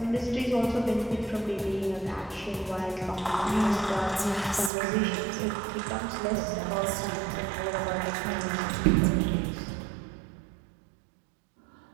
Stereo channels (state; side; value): drops out; left; at 4.7 s